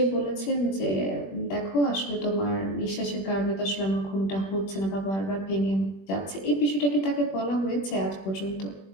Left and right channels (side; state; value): right; late; 21 ms